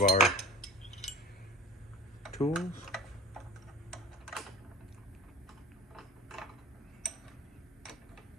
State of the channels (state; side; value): normal; both; correlation 0.42